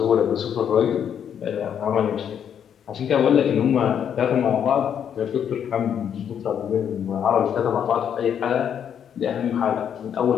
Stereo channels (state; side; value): quieter; right; 8.6 dB